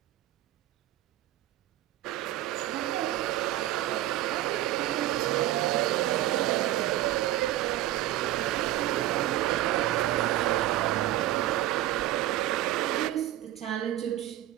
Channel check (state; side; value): quieter; left; 14.4 dB